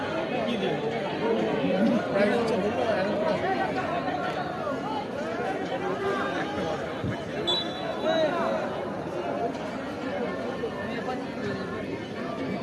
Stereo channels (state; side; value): identical; both; correlation 1.00